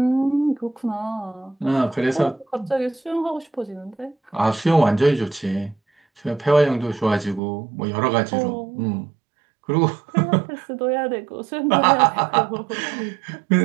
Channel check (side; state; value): left; drops out; at 7.4 s